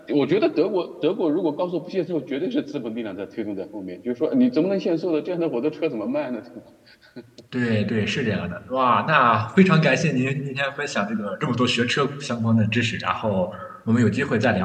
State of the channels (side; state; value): both; identical; correlation 1.00